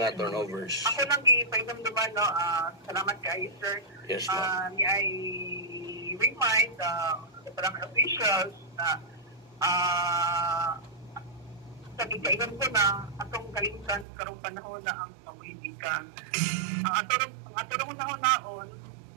turnovers? Ako lang gipahinumduman no, salamat kay sir. Yes, ma'am. I remind the barangay officials na sa gigainan ko na atong kalimtan karong panahon na ang pamulitika. Ang aturong naon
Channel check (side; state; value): left; drops out; at 14.1 s